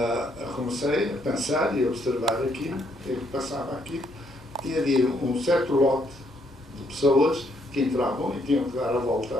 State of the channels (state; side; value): normal; both; correlation 0.72